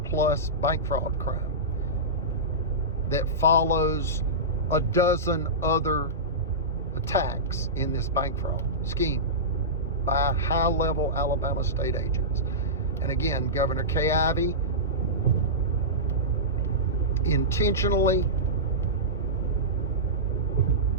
plus bank fraud crime that follows a dozen other attacks in this bank fraud scheme by high-level Alabama state agents. And again, Governor Kay Ivey intentionally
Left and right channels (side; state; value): both; normal; correlation -0.17